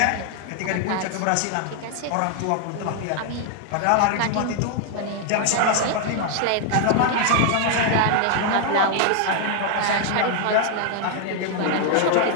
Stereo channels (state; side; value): different; both; correlation 0.00